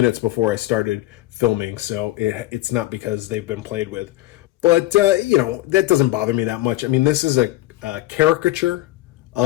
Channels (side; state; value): right; quieter; 16.9 dB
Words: before I started filming, so it's not because they've been played with. But, you know, that doesn't bother me that much. I mean, this is a caricature